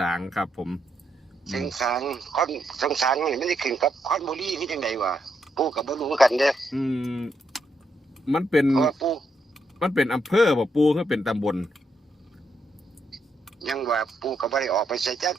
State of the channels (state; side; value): normal; both; correlation 0.79